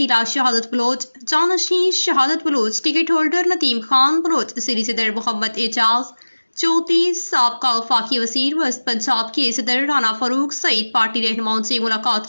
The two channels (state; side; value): inverted; both; correlation -1.00